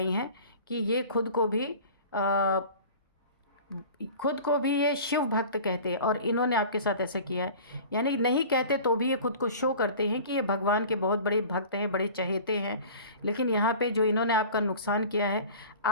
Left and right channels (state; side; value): inverted; both; correlation -0.41